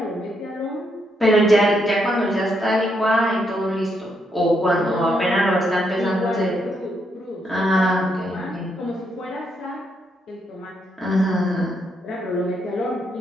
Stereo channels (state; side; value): normal; both; correlation 0.78